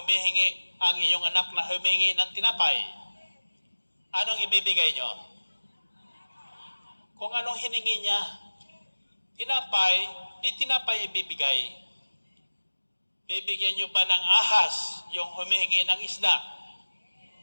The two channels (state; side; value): inverted; both; correlation -1.00